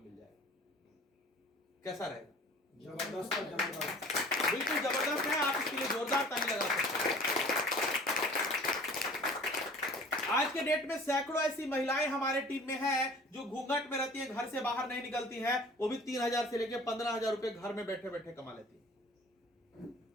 मिल जाएगा। कैसा रहेगा? जबरदस्त है, जबरदस्त। बिल्कुल जबरदस्त है। आप इसके लिए जोरदार ताली लगा सकते हैं। आज के डेट में सैकड़ों ऐसी महिलाएं हमारे टीम में हैं जो घूंघट में रहती हैं, घर से बाहर नहीं निकलती हैं। वो भी 3000 से लेकर 15,000 रुपए घर में बैठे बैठे कमा लेती हैं।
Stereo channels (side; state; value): both; normal; correlation 0.47